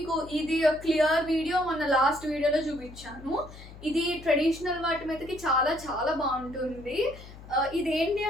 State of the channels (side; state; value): left; noise; hum, 17 dB below the sound